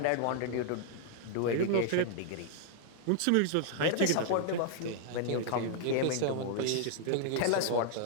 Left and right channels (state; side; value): different; both; correlation -0.01